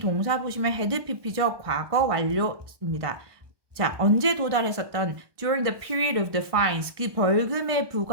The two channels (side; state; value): left; late; 1.2 ms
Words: 보시면 had pp죠. 과거 완료입니다. 자, 언제 도달했었던 during the period of the fines. 그 벌금의